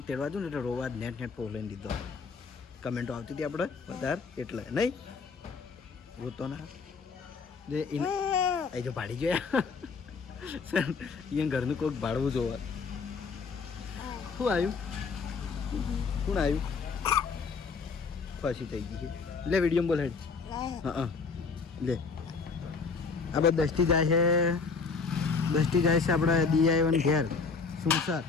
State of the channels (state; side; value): quieter; right; 4.9 dB